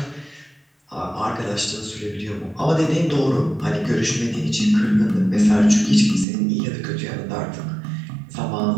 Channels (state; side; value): drops out; left; at 6.2 s